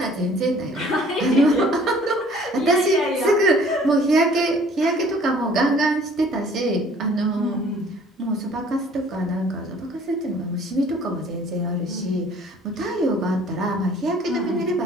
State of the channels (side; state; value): both; normal; correlation 0.54